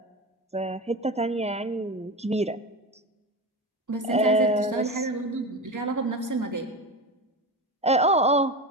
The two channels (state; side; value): normal; both; correlation 0.24